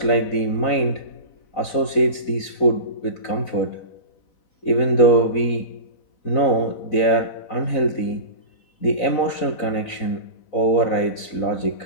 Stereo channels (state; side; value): late; right; 4.0 ms